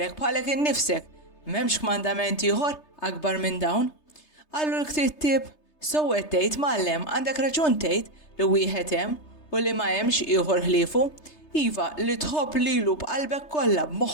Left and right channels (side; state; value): right; late; 3.3 ms